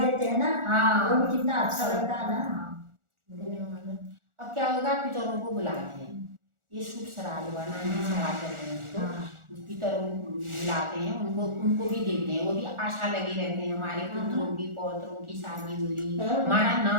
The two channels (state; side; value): late; left; 1.4 ms